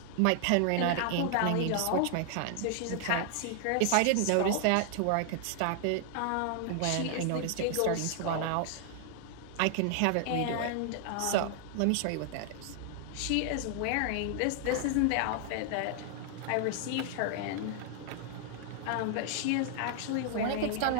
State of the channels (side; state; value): both; different; correlation 0.00